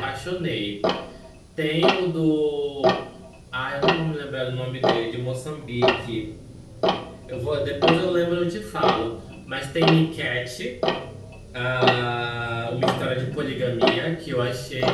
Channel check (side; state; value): both; identical; correlation 1.00